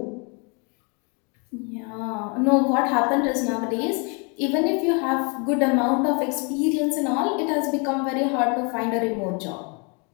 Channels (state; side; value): quieter; right; 34.0 dB